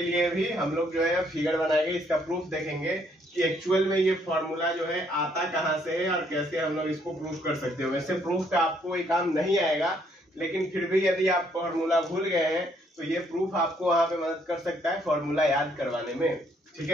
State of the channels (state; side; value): normal; both; correlation 0.69